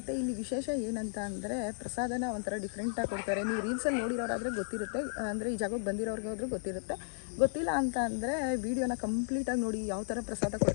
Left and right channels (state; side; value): silent; right; digital silence